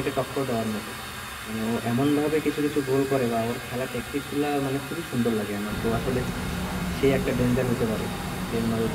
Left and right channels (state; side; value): identical; both; correlation 1.00